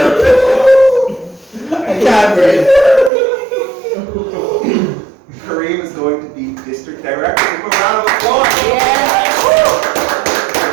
I can't breathe. Kareem is going to be district director. Give him a round of applause.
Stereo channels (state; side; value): drops out; left; at 3.1 s